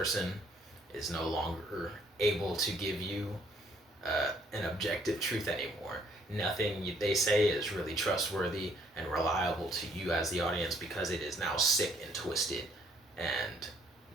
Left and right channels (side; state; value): both; normal; correlation 0.65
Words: is no longer able to give you an objective truth anymore. Nothing they say is really trustworthy and reliable to you as the audience, because it is now sick and twisted and